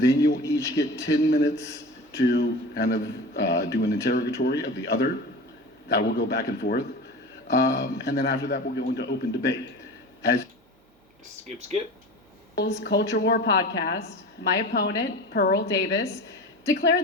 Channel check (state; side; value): normal; both; correlation 0.34